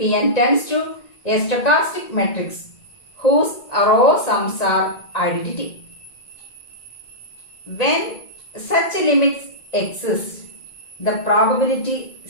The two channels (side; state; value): right; late; 1.9 ms